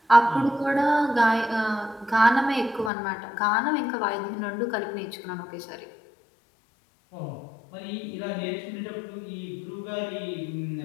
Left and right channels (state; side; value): drops out; right; at 2.9 s